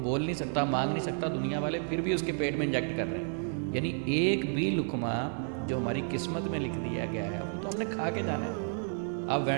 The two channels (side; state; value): left; silent; 57 dB below the other